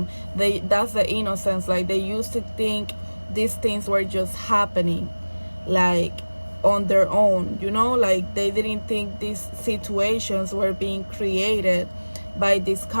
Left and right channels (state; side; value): inverted; both; correlation -1.00